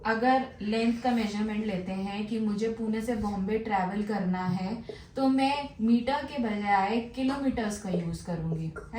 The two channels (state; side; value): identical; both; correlation 1.00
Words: अगर लेंथ का मेजरमेंट लेते हैं कि मुझे पुणे से बॉम्बे ट्रैवल करना है, तो मैं मीटर के बजाय किलोमीटर्स का यूज करूंगी,